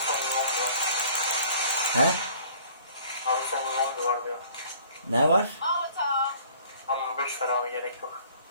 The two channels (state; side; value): inverted; both; correlation -0.53